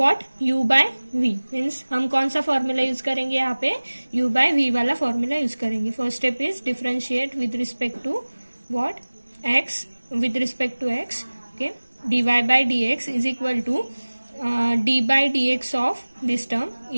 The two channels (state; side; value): inverted; both; correlation -1.00